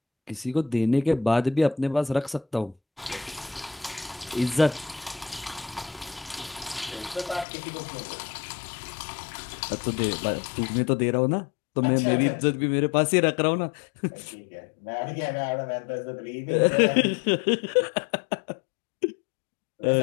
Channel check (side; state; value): right; drops out; at 7.5 s